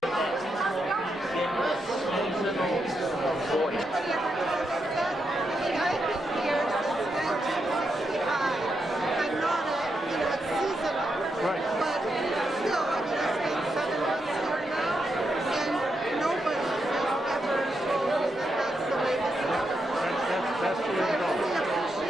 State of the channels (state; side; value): normal; both; correlation 0.84